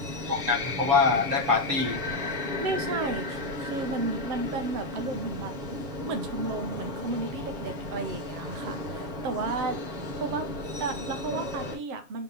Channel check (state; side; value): late; left; 7.3 ms